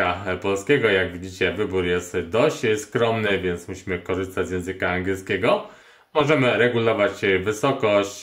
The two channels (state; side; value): identical; both; correlation 1.00